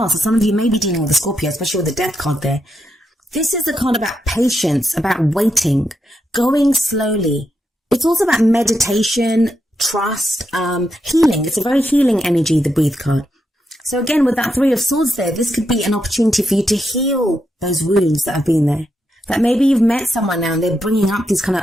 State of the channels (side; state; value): both; normal; correlation 0.83